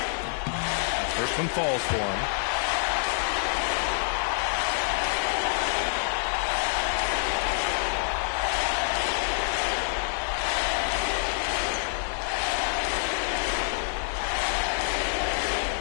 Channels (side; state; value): right; silent; 60 dB below the other